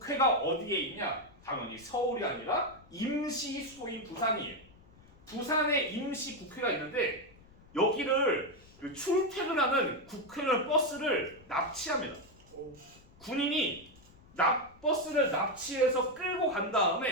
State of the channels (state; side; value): noise; left; rumble, 25 dB below the sound